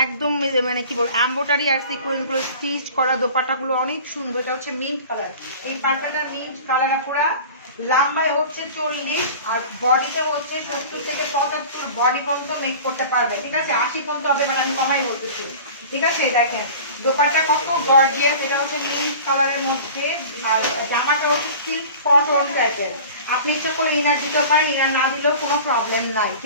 একদম মানে কি বলবো এমব্রয়ডারি আর সিকোয়েন্স গুলো স্টিচ করা, দোপাট্টা গুলো অনেক সুন্দর। এটা হচ্ছে মিন্ট কালার, এই পাট্টাটা মিন্ট কালার পুরা, লম্বায় হচ্ছে 40 আর বডিতে হচ্ছে 70-75 বডি পর্যন্ত মেক করতে পারবে, ঠিক আছে? 80 পর্যন্ত হবে, বাট আমি কমাই বলতেছি, ঠিক আছে? দেখেন দোপাট্টা কত গর্জিয়াস, এটা হচ্ছে মিন্ট কালারের মধ্যে, আর জামাটা হচ্ছে সিল্ক কটন টাইপের। আপনি ইচ্ছা করে ইনার দিতে পারেন, ইনার না দিলেও কোনো প্রবলেম নাই,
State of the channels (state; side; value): inverted; both; correlation -0.40